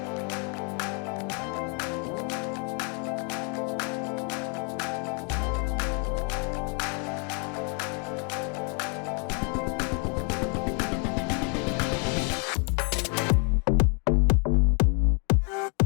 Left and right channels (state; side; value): quieter; right; 37.2 dB